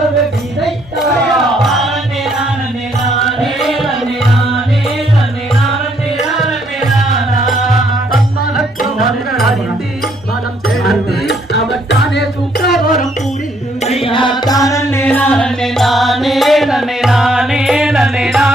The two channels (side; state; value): both; normal; correlation 0.69